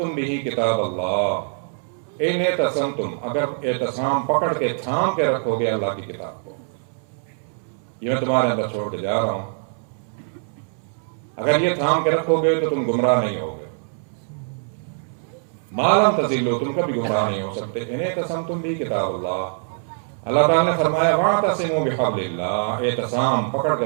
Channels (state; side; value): silent; left; 63 dB below the other